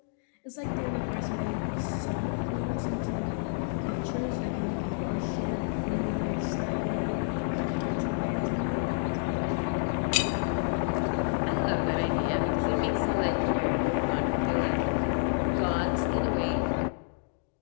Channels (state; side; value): silent; right; digital silence